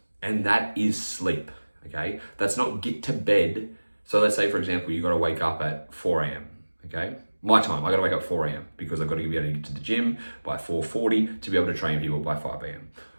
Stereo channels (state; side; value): inverted; both; correlation -1.00